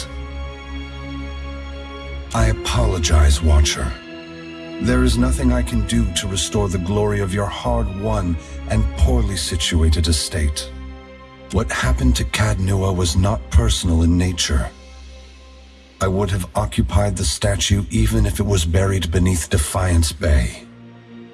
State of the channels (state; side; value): identical; both; correlation 1.00